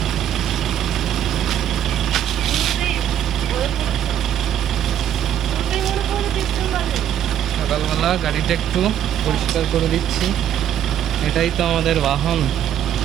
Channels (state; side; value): quieter; left; 10.2 dB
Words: সকালবেলা গাড়িটা একটু পরিষ্কার করে দিচ্ছি, এটাই তো আমাদের বাহন।